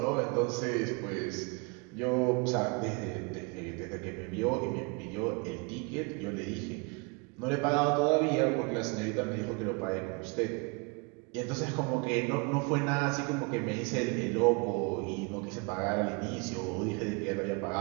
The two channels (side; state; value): left; quieter; 31.1 dB